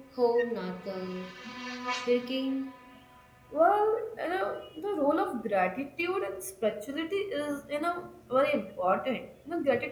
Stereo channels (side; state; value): both; identical; correlation 1.00